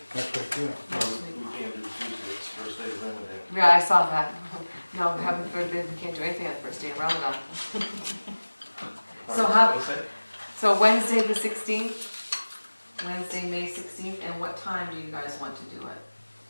Next week, yeah. Next No, week. we can't do Tuesday, it's first day of Ramadan. Yeah, I saw that. No, heaven forbid, we can't do anything on the first day of Ramadan. So how- Wednesday? So Wednesday the 16th, Wednesday, May 16th, and what time do you guys want to do it?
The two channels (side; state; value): both; inverted; correlation -1.00